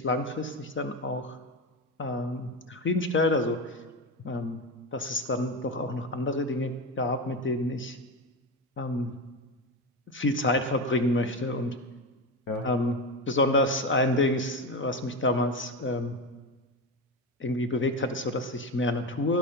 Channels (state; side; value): normal; both; correlation 0.19